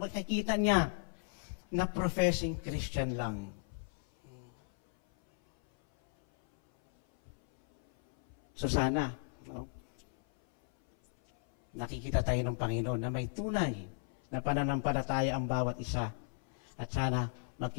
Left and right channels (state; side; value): silent; right; 54 dB below the other